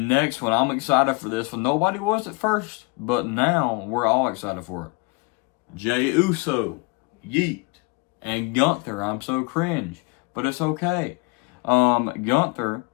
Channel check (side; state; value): right; quieter; 27.6 dB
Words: one, I'm excited for this one. Nobody was at first, but now we're all excited for it. Jey Uso, Yeet, and Gunther. I'm so cringe, but it's okay. Gunther,